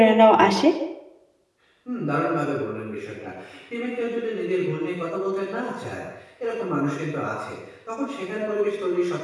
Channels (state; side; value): identical; both; correlation 1.00